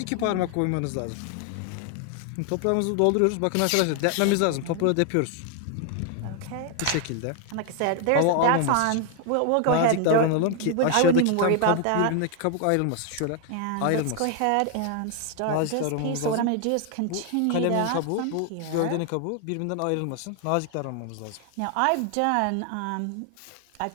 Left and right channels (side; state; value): both; different; correlation 0.00